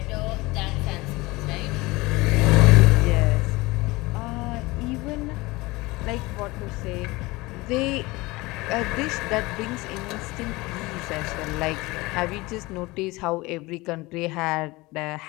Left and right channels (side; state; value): right; quieter; 21.9 dB